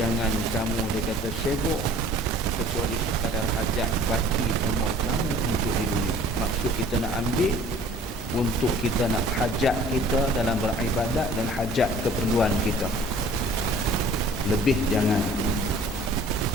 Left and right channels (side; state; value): both; normal; correlation 0.51